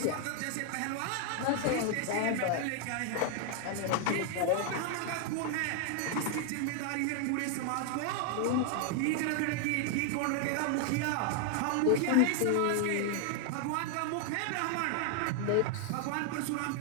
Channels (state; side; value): different; both; correlation 0.00